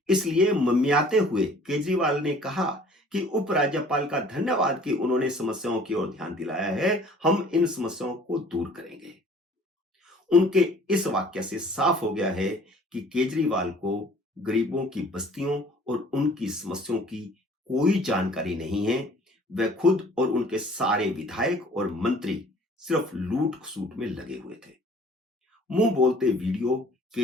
इसलिए मम्मियाते हुए केजरीवाल ने कहा कि उपराज्यपाल का धन्यवाद कि उन्होंने समस्याओं की ओर ध्यान दिलाया है, हम इन समस्याओं को दूर करेंगे। उनके इस वाक्य से साफ हो गया है कि केजरीवाल को गरीबों की बस्तियों और उनकी समस्याओं की कोई जानकारी नहीं है। वे खुद और उनके सारे विधायक और मंत्री सिर्फ लूट खसूट में लगे हुए थे। मुंह बोलते वीडियो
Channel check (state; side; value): normal; both; correlation 0.52